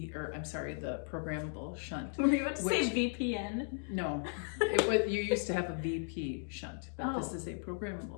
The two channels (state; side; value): silent; right; digital silence